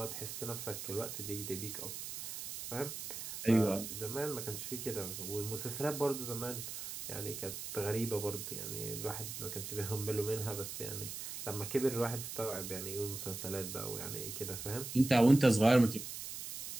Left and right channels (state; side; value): noise; right; hiss, 7 dB below the sound